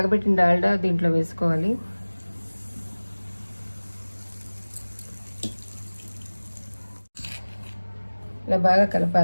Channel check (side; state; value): both; inverted; correlation -1.00